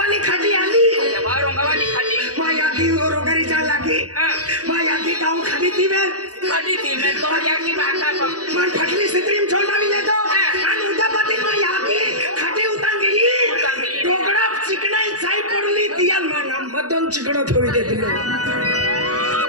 खटी आली बा रंगावाली खटी मा याकी रोगरी जा लागी मा याकी गांव खटी थी में तो याकी बाका मन फटली सिंदरी में चोंडा भी तो अन उदापति मा याकी खटी उतांगी टोकड़ा चिकनाई साई पड़ली दियाल मा नाम मदन चिकड़ो थोड़ी दे दिलो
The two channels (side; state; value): left; late; 0.67 ms